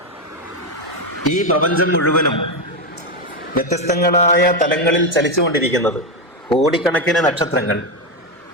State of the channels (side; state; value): both; normal; correlation 0.09